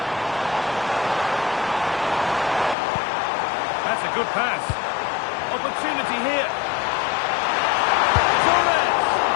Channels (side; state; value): right; drops out; at 2.8 s